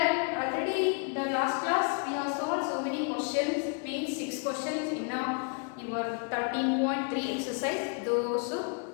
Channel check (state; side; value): quieter; right; 39.2 dB